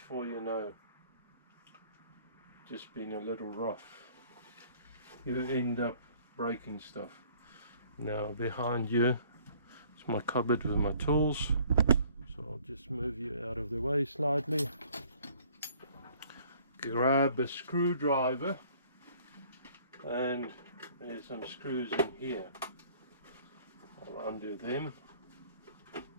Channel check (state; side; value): inverted; both; correlation -0.56